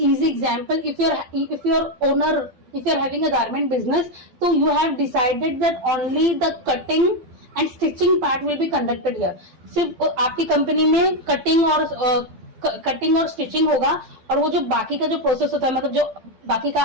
easy example. If you're having a garment business, so you have decided that only the cutting and stitching part will be conducted here. सिर्फ आपकी कंपनी में कटिंग और स्टिचिंग होगा, और वो जो बाकी का जो प्रोसेस होता है, मतलब जो बाकी का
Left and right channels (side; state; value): left; late; 12 ms